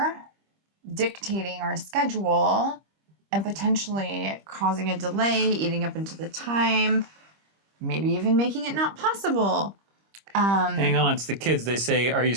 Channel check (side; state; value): left; late; 25 ms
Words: dictating our schedule and potentially causing a delay, eating up into the time, maybe even making it not possible. Hang on, it's the kids. They say, "Are you